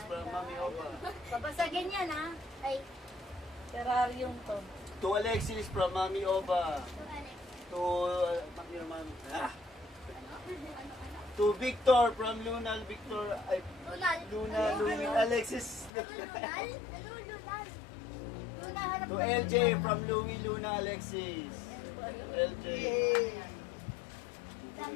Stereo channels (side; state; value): right; drops out; at 15.9 s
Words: from Mami Oba. Babasagin yan ha. Ay, Terrarium to. To Alexis from Mami Oba. ito Alex. To To Victor from Luna Victor ay Lunal. Luna Ano? Louie Alexis. Ano Lunal? Ano Lunal? Luna harap To ka. LJ from Louie Luna Alexis. LJ.